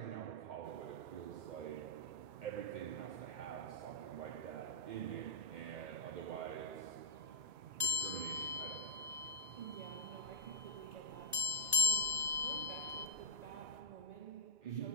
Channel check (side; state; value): left; late; 1.9 ms